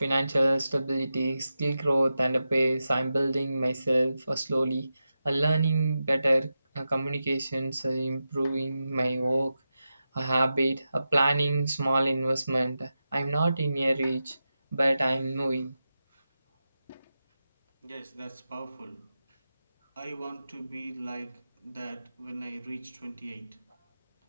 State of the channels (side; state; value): both; inverted; correlation -0.91